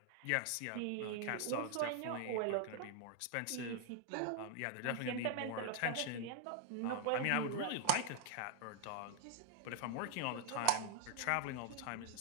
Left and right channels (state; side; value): different; both; correlation 0.00